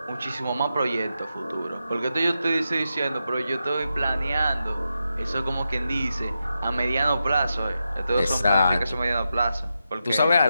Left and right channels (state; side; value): inverted; both; correlation -0.88